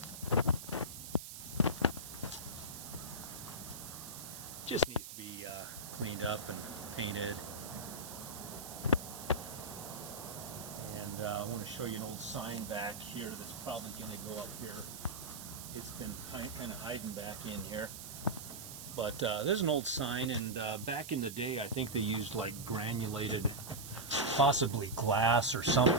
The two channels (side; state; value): right; noise; hiss, 10 dB below the sound